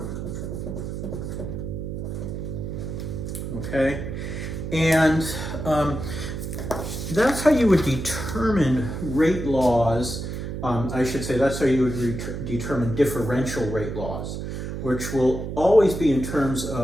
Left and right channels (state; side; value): noise; right; hum, 6 dB below the sound